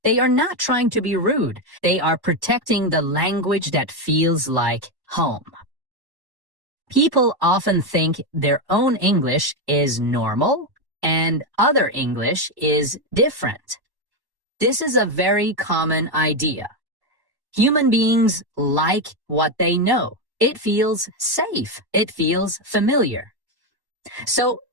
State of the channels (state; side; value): late; left; 1.1 ms